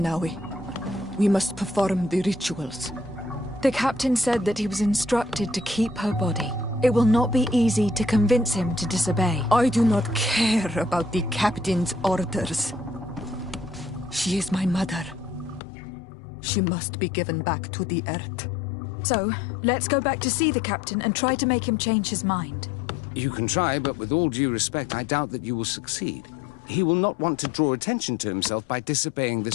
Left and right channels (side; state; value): right; drops out; at 15.6 s